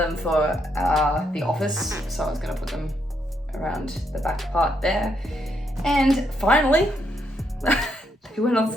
for the office, so I was going to put them around the back part there. And finally, they went on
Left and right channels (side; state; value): both; normal; correlation 0.76